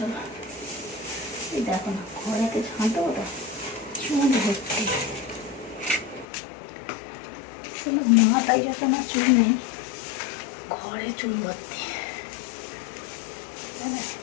এই দেখো না, ঘরেতে ঝাঁট দেবো তো চুল ভর্তি, মাথায় যত না চুল নেই, ঘরে চুল ভর্তি।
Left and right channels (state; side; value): drops out; right; at 6.2 s